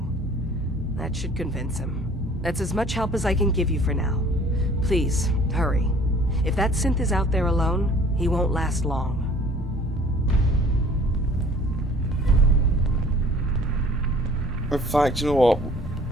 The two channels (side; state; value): both; normal; correlation 0.52